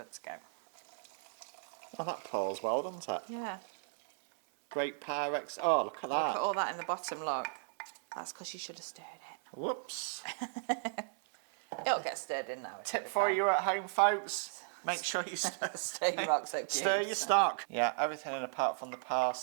to go. Oh, that pours well, doesn't it? Yeah. Great Pyrex. Oh, look at that. Look at all that in the bottom, look. That's because you should have stirred it. Whoops. It'll get stirred in now. Tip for you at home, folks. Make sure you Stir your oxo cubes. stir your stock. Yeah, everything in apart from the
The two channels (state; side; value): silent; left; 54 dB below the other